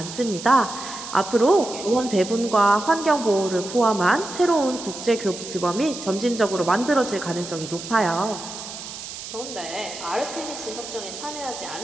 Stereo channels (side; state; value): right; noise; hiss, 11 dB below the sound